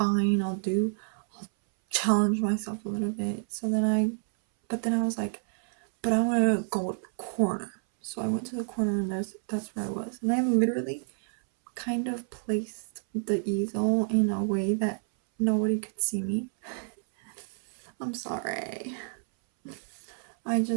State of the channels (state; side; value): silent; left; 59 dB below the other